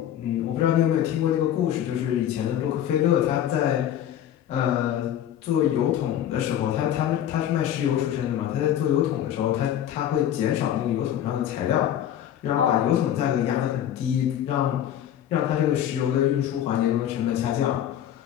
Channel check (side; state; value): right; quieter; 10.8 dB